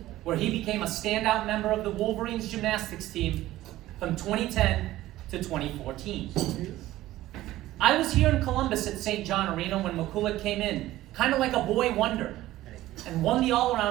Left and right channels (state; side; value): quieter; left; 15.6 dB